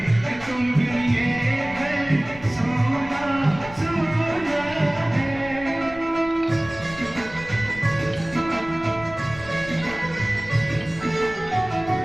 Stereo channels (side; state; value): left; noise; rumble, 17 dB below the sound